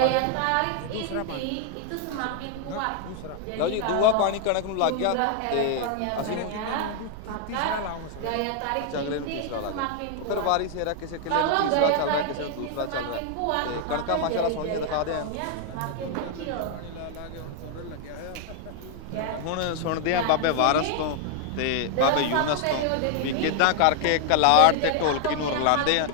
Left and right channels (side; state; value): both; different; correlation 0.00